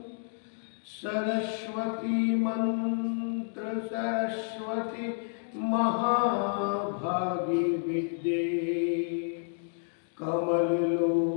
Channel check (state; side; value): silent; right; digital silence